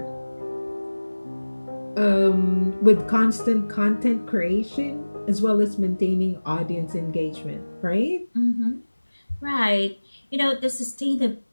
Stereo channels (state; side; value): inverted; both; correlation -1.00